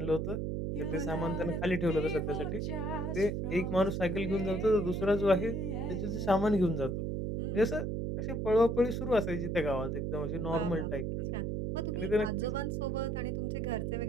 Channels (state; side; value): noise; right; hum, 1 dB below the sound